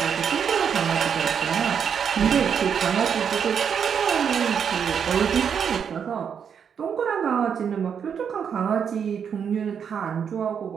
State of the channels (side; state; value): left; quieter; 7.4 dB